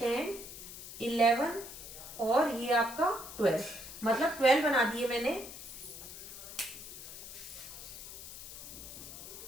11 और ये आपका 12, मतलब 12 बना दिए मैंने।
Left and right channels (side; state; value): left; noise; hiss, 12 dB below the sound